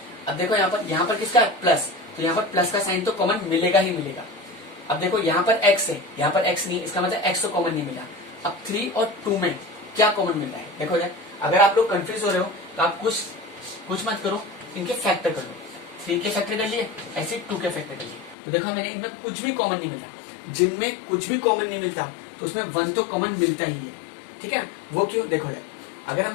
अब देखो यहाँ पर किसका है प्लस, तो यहाँ पर प्लस का साइन तो कॉमन मिलेगा ही मिलेगा। अब देखो यहाँ पर x है यहाँ पर x नहीं, इसका मतलब x तो कॉमन नहीं मिला। अब 3 और 2 में क्या कॉमन मिल रहा है, देखो यार अगर आप लोग कंफ्यूज हो रहे हो तो आप कुछ मत करो, इनके फैक्टर कर लो, 3 के फैक्टर कर लिए ऐसे 2 के फैक्टर कर लिए, तो देखा मैंने इनमें कुछ भी कॉमन नहीं मिलता, जिनमें कुछ भी कॉमन नहीं मिलता तो उसमें 1 तो कॉमन मिलता ही है। ठीक है, वो क्यों, देखो यार अगर हम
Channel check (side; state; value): right; drops out; at 18.4 s